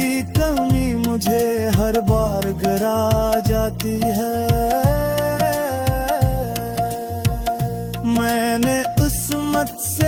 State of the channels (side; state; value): both; identical; correlation 1.00